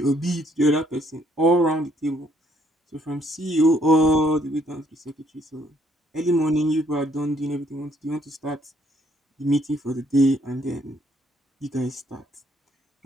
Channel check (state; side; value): normal; both; correlation 0.67